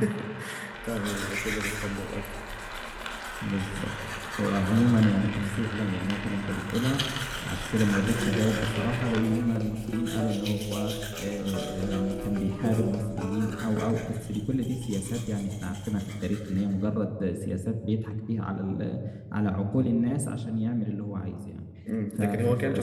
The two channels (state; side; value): identical; both; correlation 1.00